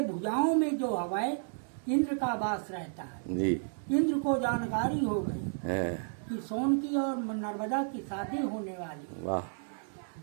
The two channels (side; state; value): left; silent; digital silence